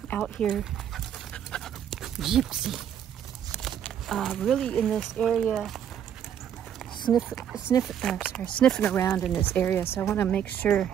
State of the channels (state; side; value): quieter; left; 9.3 dB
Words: out here. Gypsy. Really in this area, sniffing around in this area. So I want to make sure.